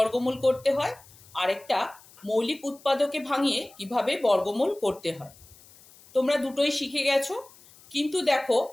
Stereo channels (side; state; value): left; noise; hiss, 25 dB below the sound